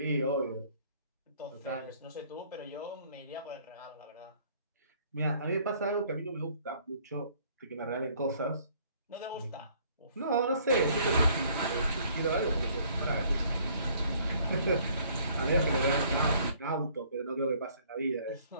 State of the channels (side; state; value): both; inverted; correlation -0.60